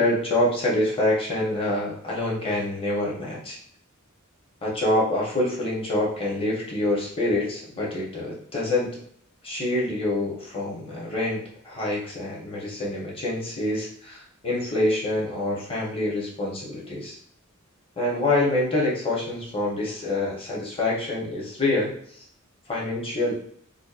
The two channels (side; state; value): both; normal; correlation 0.34